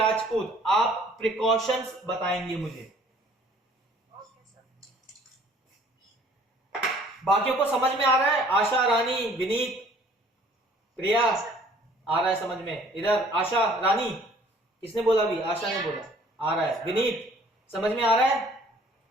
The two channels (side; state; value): both; normal; correlation 0.56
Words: आप प्रिकॉशंस बताएंगे मुझे। Okay sir. बाकियों को समझ में आ रहा है? आशा, रानी, विनीत, प्रिया, आ रहा है समझ में? इधर आशा, रानी, किसने बोला? अभी आशा ने बोला आ रहा है। विनीत, समझ में आ रहा है?